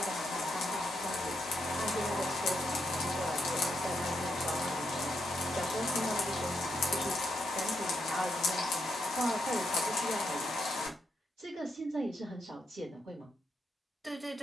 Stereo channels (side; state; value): both; normal; correlation 0.81